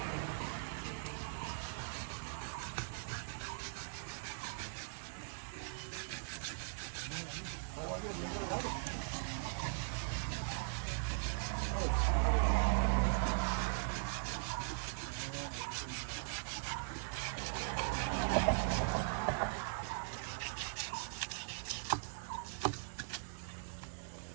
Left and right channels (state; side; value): silent; left; digital silence